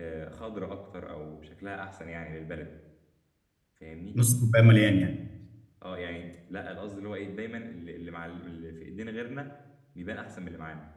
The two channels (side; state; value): both; identical; correlation 1.00